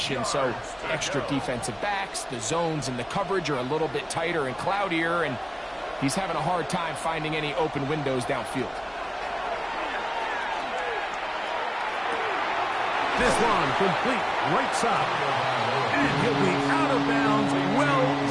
so extra defensive backs, the zones and the coverage are a little bit tighter and cloudier, and He's having a hard time finding any open windows downfield. This one complete right side. And he'll be out of bounds, well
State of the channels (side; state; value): both; identical; correlation 1.00